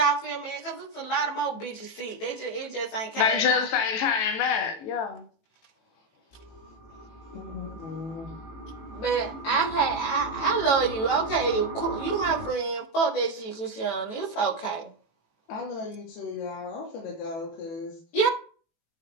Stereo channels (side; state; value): right; late; 18 ms